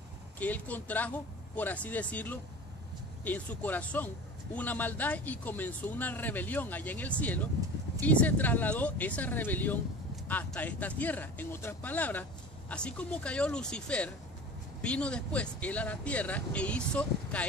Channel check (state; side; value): normal; both; correlation 0.37